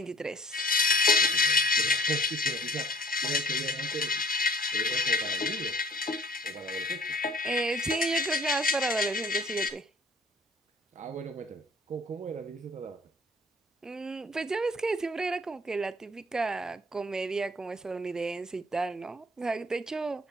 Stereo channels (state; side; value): normal; both; correlation 0.53